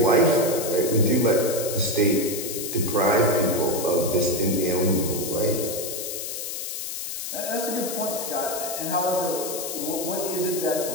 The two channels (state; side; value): noise; left; hiss, 5 dB below the sound